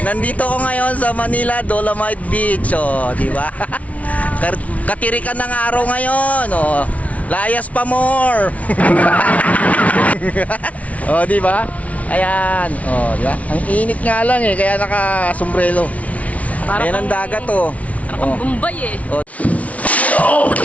Nandito ko ngayon sa Manila Dolomite Beach, di ba? Katirikan ng araw ngayon, layas pa more. Di ba? Ayan, di ba? Ang init nga lang kaya naka-sombrero. Ayan ang dagat, Parang Bombay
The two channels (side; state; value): right; late; 0.067 ms